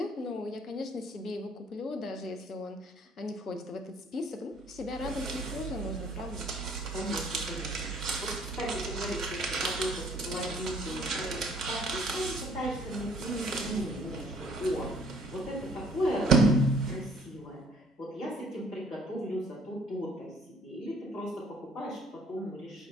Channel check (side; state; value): both; normal; correlation 0.59